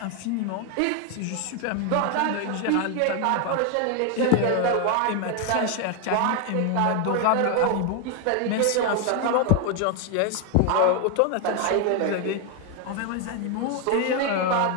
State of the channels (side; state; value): both; different; correlation 0.01